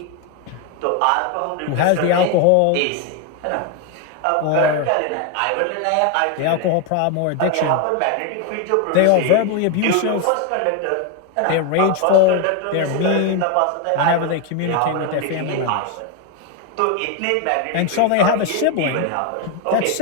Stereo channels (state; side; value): different; both; correlation 0.01